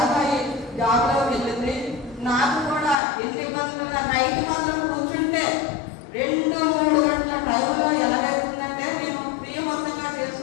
అయ్యి జాబ్లో వెళ్ళింది. నాకు కూడా ఎన్ని ఇబ్బందులు నైట్ మాత్రం కూర్చుంటే 2-3 గంటల టైంలో ఎలాగైతుందంటే నేను ప్రియవంతంగా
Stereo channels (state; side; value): drops out; right; at 3.0 s